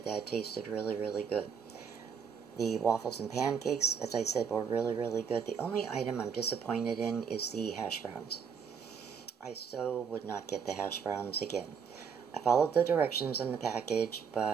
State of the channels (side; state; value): left; quieter; 6.7 dB